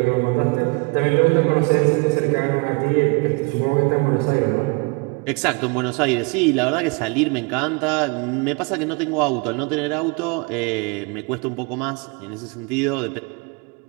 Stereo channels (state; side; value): quieter; left; 29.7 dB